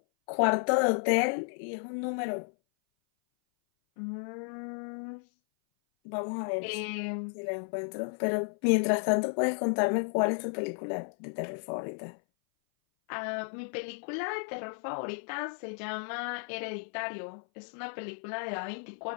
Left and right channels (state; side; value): silent; right; 56 dB below the other